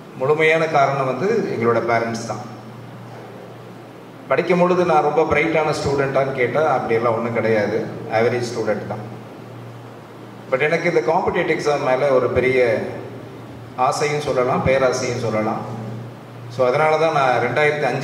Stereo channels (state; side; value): identical; both; correlation 1.00